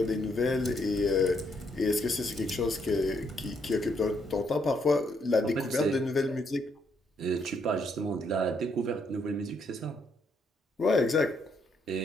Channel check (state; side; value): normal; both; correlation 0.74